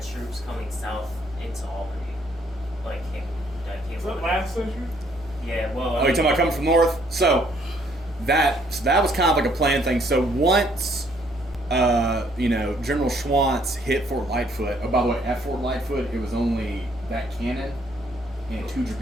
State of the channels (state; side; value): normal; both; correlation 0.65